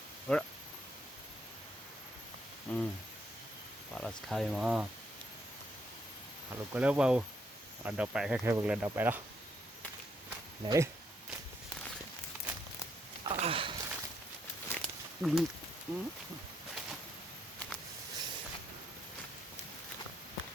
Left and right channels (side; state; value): both; normal; correlation 0.75